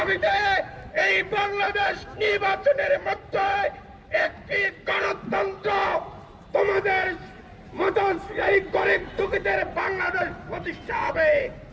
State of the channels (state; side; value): identical; both; correlation 1.00